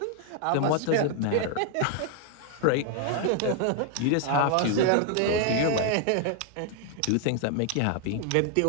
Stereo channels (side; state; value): both; different; correlation 0.00